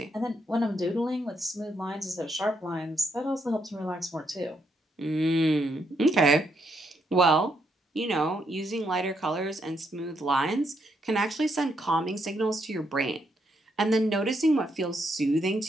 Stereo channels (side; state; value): both; normal; correlation 0.76